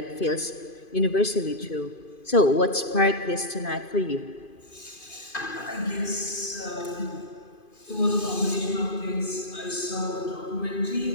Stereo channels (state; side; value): late; right; 2.5 ms